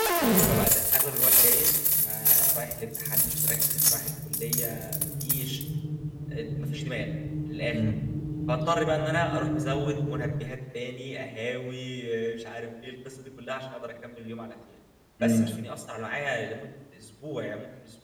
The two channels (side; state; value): both; identical; correlation 1.00